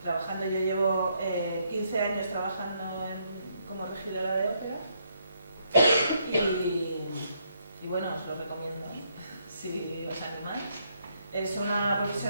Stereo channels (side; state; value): both; inverted; correlation -0.73